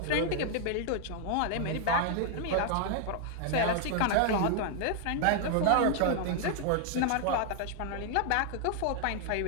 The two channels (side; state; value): both; different; correlation 0.00